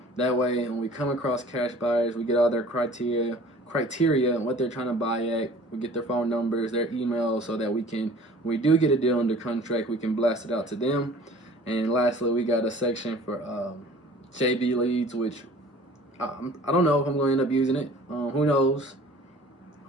that way when we come across cash buyers, we get all their criteria and what they're trying to buy at. We get their phone numbers, their emails, so that we can, when we do get a deal under contract, we can blast it out to them. And lastly, we got a section for JB leads, which I don't know if I'm going to end up using it. Who knows?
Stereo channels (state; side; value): normal; both; correlation 0.47